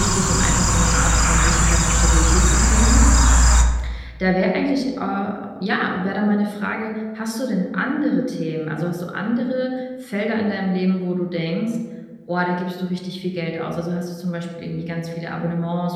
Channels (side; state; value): both; identical; correlation 1.00